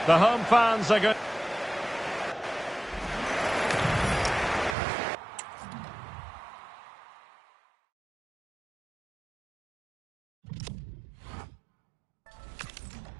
The home fans are going...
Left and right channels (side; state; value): left; drops out; at 4.8 s